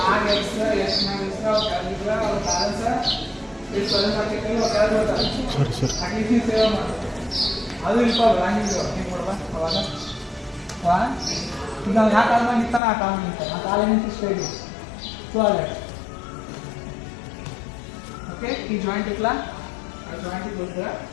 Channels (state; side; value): drops out; right; at 12.8 s